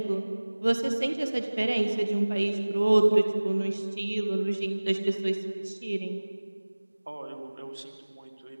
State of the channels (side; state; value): both; inverted; correlation -1.00